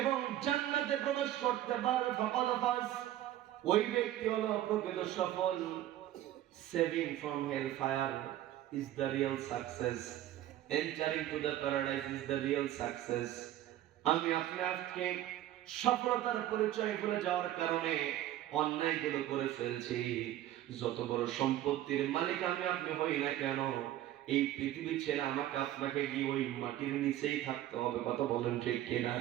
জান্নাতে প্রবেশ করতে পারবে, ফাকাদ ফাজ, ওই ব্যক্তি হলো প্রকৃত সফল। Saving from hell fire is the real success, entering to the paradise is the real success. আমি আপনাকে সফলতার পরিচয় ভুলে যাওয়ার কারণে অন্যায়গুলো করে ফেলছি। যত বড় সম্পত্তির মালিক আমি আপনি হই না কেন, এই পৃথিবী ছেড়ে আমাকে আপনাকে গিয়ে ওই মাটির নিচেই থাকতে হবে। কথা বলেন ঠিক কিনা?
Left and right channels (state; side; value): quieter; left; 13.3 dB